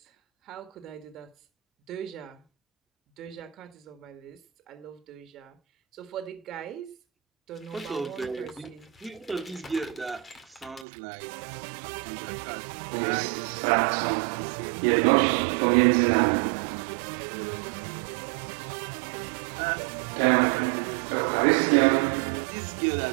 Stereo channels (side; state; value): left; drops out; at 10.9 s